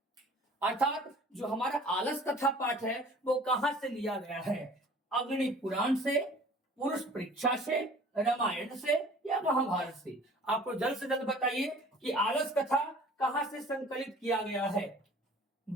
अर्थात जो हमारा आलस कथा पाठ है वो कहां से लिया गया है, अग्नि पुराण से, पुरुष परीक्षा से, रामायण से या महाभारत से। आपको जल्द से जल्द बताइए कि आलस कथा कहां से संकलित किया गया है,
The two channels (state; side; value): normal; both; correlation 0.48